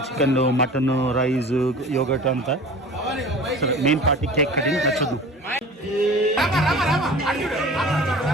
చికెన్, మటన్, రైస్, యోగట్ అంతా. మెయిన్ పార్టీ కేక్ కటింగ్ నచ్చదు.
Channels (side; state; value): both; normal; correlation 0.40